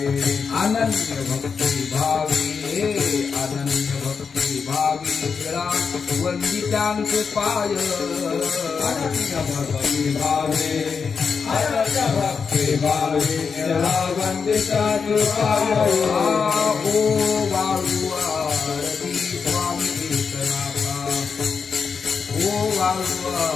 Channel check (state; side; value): quieter; right; 5.7 dB